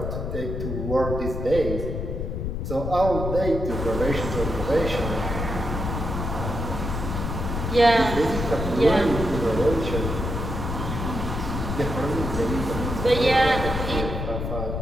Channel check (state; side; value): noise; left; rumble, 3 dB below the sound